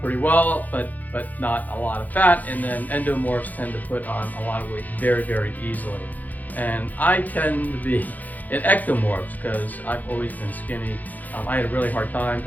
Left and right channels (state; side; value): late; right; 0.081 ms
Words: pretty well, but not a lot of fat, and then endomorphs tend to put on a lot of weight very, very easily. And I tend to be an ectomorphs because I've always been skinny. I had a really hard time,